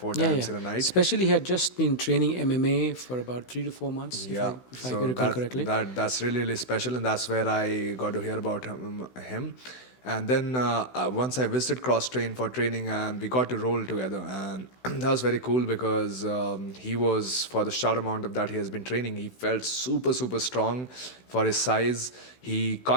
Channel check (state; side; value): late; right; 16 ms